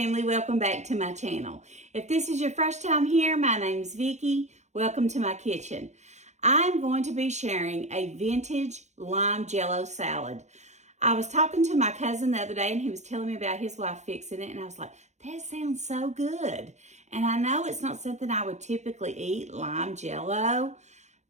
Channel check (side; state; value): left; late; 0.33 ms